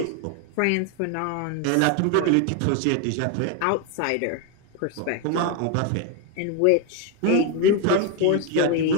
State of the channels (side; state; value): both; different; correlation 0.01